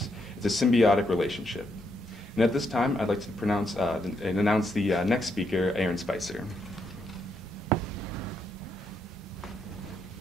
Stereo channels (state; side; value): normal; both; correlation 0.78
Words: It's a symbiotic relationship. And at this time, I'd like to announce the next speaker, Aaron Spicer.